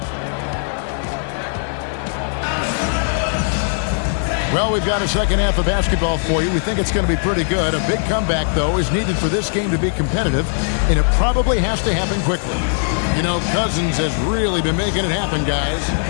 Well, we've got a second half of basketball for you. We think it's going to be pretty good. A big comeback, though, is needed for this game to be competitive, and it probably has to happen quickly. You know, Cousins has really been making it happen, guys.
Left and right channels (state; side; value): silent; right; digital silence